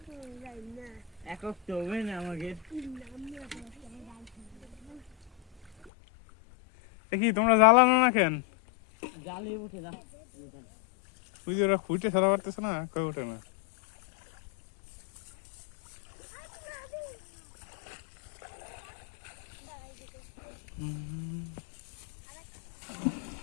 একক তো হবে না আমাকে দেখি তোমরা জ্বালানো না কেন জালে উঠে যা ওই যে ওরা খুঁটে সারা পারতেছে না, কই ওঠে না।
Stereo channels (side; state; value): right; drops out; at 5.9 s